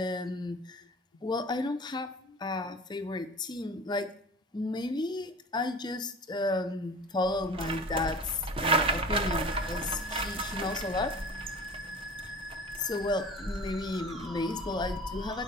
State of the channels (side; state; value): both; normal; correlation 0.39